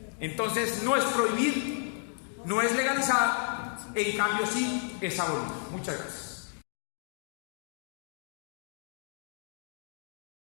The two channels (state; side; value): silent; right; 56 dB below the other